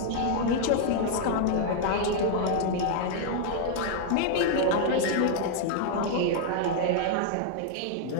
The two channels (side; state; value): both; different; correlation 0.00